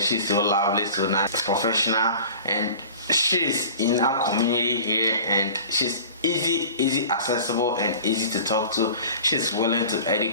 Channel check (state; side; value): inverted; both; correlation -0.41